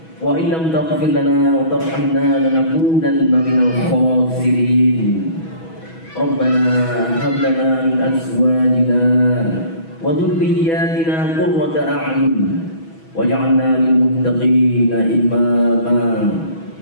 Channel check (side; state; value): right; late; 6.2 ms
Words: وإن لم تغفر لنا وترحمنا لنكونن من الخاسرين. ربنا هب لنا من أزواجنا وذرياتنا قرة أعين واجعلنا للمتقين إماما.